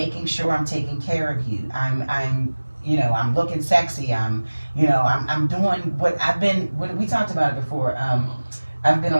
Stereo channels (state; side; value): inverted; both; correlation -1.00